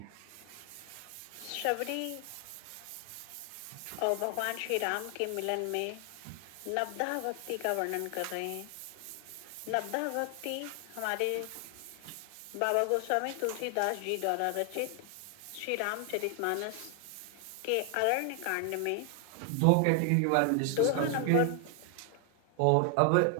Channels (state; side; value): different; both; correlation 0.00